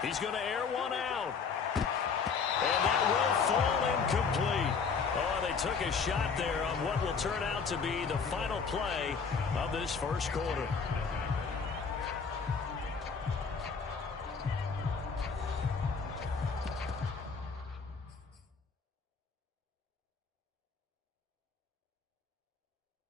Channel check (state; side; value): quieter; right; 5.6 dB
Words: He's going to air one out. And that will fall incomplete. Oh, they took a shot there on what will turn out to be the final play of this first quarter.